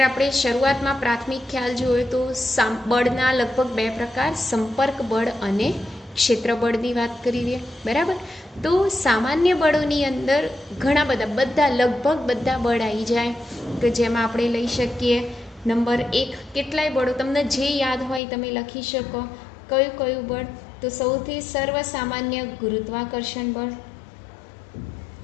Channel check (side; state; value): right; drops out; at 18.2 s